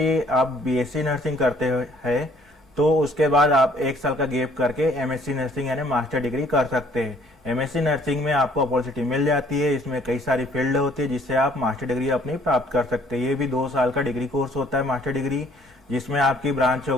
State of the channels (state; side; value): normal; both; correlation 0.60